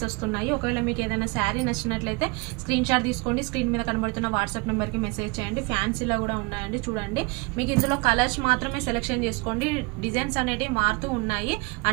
వస్తున్నాయి. ఒకవేళ మీకు ఏదైనా శారీ నచ్చినట్లయితే స్క్రీన్ షాట్ తీసుకోండి, స్క్రీన్ మీద కనబడుతున్న వాట్సాప్ నెంబర్కి మెసేజ్ చేయండి. ఫ్యాన్సీలో కూడా ఉన్నాయండి. చూడండి, మీకు ఇందులో కలర్స్ మాత్రమే సెలెక్షన్ చేసుకోండి. డిజైన్స్ అనేవి మారుతూ ఉన్నాయి.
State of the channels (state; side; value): quieter; left; 27.6 dB